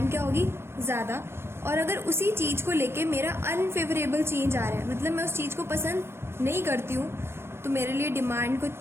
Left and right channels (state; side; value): late; left; 0.12 ms